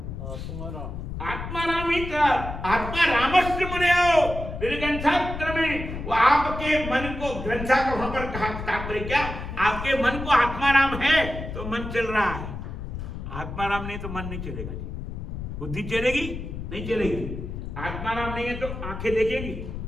आत्मा राम ही था, आत्मा रामस्य मुनियो निर्ग्रंथात्र में, वो आपके मन को, ग्रंथा का वहां पर कहा तात्पर्य क्या, आपके मन को आत्मा राम है तो मन चल रहा है, आत्मा राम नहीं तो मन नहीं चलेगा। बुद्धि चलेगी नहीं चलेगी, आत्मा राम नहीं है तो आंखें देखेंगी,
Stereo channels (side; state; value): left; noise; rumble, 7 dB below the sound